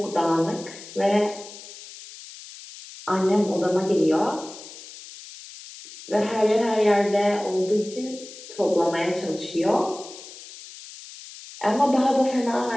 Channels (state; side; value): noise; left; hiss, 16 dB below the sound